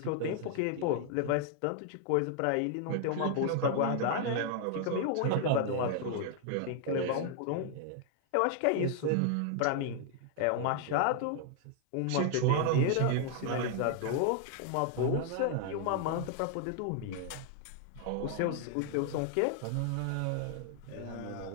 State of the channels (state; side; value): different; both; correlation 0.00